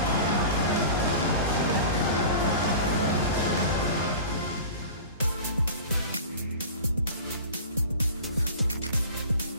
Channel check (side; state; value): both; inverted; correlation -0.37